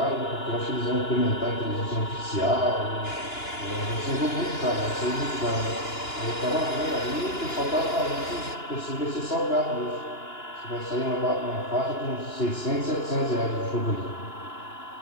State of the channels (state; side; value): late; right; 2.9 ms